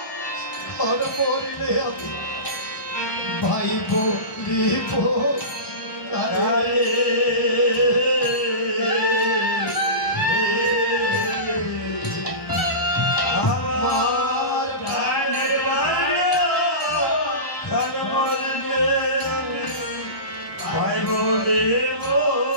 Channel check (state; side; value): late; right; 1.0 ms